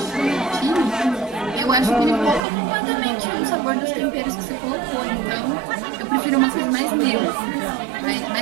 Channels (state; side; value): drops out; left; at 2.4 s